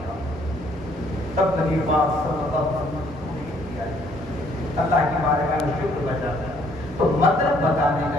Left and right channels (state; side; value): normal; both; correlation 0.65